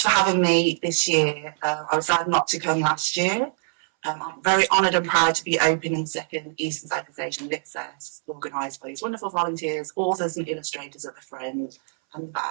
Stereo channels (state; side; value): silent; left; 62 dB below the other